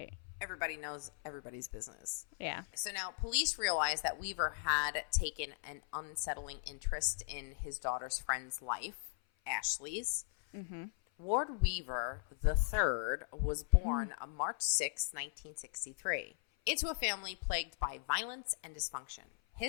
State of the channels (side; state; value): right; silent; 52 dB below the other